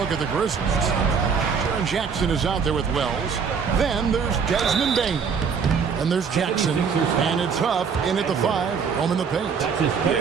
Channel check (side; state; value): left; quieter; 6.2 dB